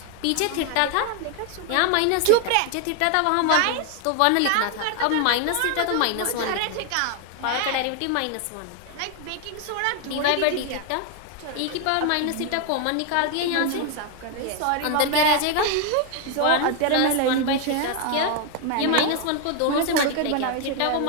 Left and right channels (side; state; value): both; different; correlation 0.01